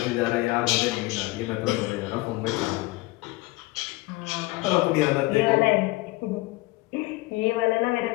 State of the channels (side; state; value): right; quieter; 21.2 dB